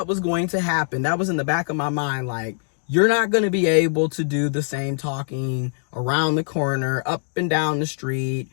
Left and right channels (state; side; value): silent; right; digital silence